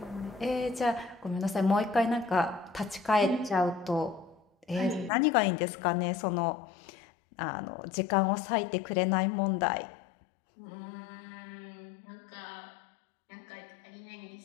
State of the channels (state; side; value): drops out; right; at 5.1 s